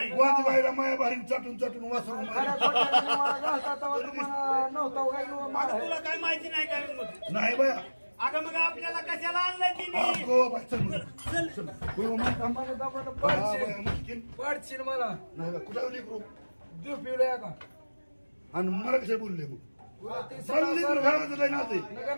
वाज बाहेर माया बाहेर चाटून चाटून वासरून खऱ्या खोट्याने मला घालता तेव्हा तुम्हाला नव्हता काय किंवा आता मला तुला काय माहिती नाही काय मग नाही बाया अगं मग आपल्याला कशाला आणलंय तिने अगो बाय चल चल चल होय मग दमानं दमानं हा, पाडशील बाया, मुश्किल. पाडशील मला नाही बा, कुठं लेकरू देऊ पिवळ्या का आणि मला कशा बोलले मग तुला ते चालली सडा तर सारवण- घराचं लय नाते नका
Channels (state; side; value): inverted; both; correlation -1.00